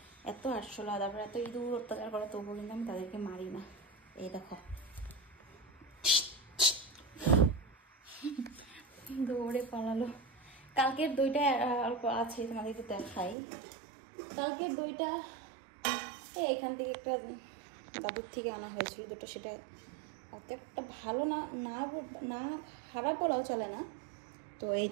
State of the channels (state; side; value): drops out; left; at 13.4 s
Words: এত আটশোলা, তারপরে এত ইঁদুর অত্যাচার করে, তবুও কিন্তু আমি তাদেরকে মারি না। এই দেখো দৌড়ে পালালো। কালকের দইটা অল্প আছে, তোমাদেরকে দেখাই। কালকের দইটা এখান থেকে একটা দাদুর থেকে আনা হয়েছিল দুটো, সেটা অত একটা ভালো না, না খারাপ বলাও চলে না। তো এই